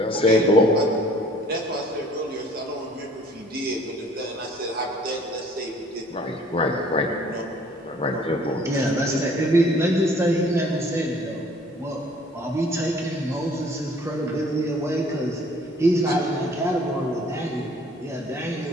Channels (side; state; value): both; normal; correlation 0.55